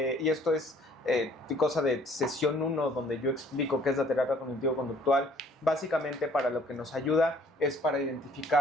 y esto es cosa de sesión 1, donde yo explico qué es la terapia cognitivo-conductual, básicamente para lo que nos ayuda es para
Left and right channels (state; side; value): normal; both; correlation 0.58